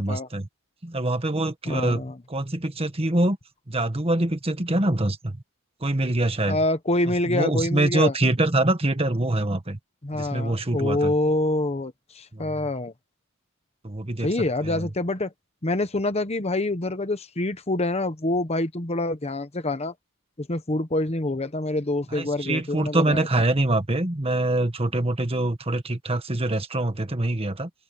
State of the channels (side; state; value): both; normal; correlation 0.60